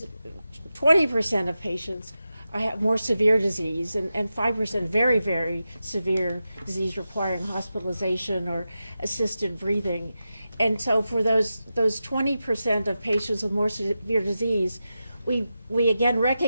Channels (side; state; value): both; inverted; correlation -0.91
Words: 20% of patients have more severe disease, and 5% very, very severe disease requiring hospitalization or assisted breathing. And so for those 20% of patients with more severe disease, we again